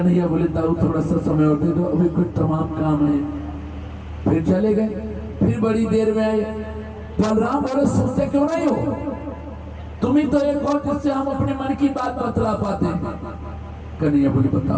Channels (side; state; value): both; identical; correlation 1.00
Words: बोले दाऊ थोड़ा सा समय और दे दो, अभी कुछ तमाम काम है। फिर चले गए। फिर बड़ी देर में आए। बलराम बोले सोचते क्यों नहीं हो, तुम ही तो एक हो जिससे हम अपने मन की बात बतला पाते हैं। कन्हैया बोले